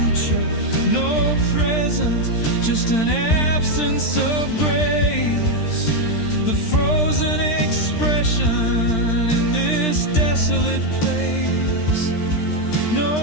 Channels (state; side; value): late; right; 13 ms